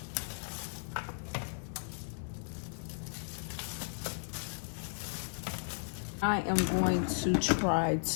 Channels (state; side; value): silent; right; 54 dB below the other